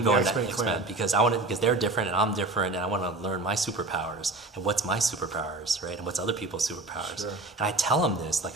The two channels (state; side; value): quieter; left; 3.1 dB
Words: X-Men clan. because they're different and I'm different, and I want to learn my superpowers and what's my superpowers, right? And what's other people's superpowers. Sure. And I tell him this like